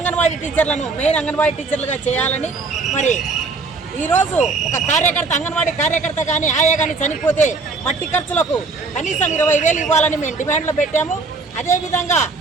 టీచర్లను మెయిన్ అంగన్వాడీ టీచర్లుగా చేయాలని, మరి ఈరోజు ఒక కార్యకర్త అంగన్వాడీ కార్యకర్త కానీ ఆయా కానీ చనిపోతే మట్టి ఖర్చులకు కనీసం 20,000 ఇవ్వాలని మేము డిమాండ్లో పెట్టాము. అదేవిధంగా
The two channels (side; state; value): left; quieter; 4.0 dB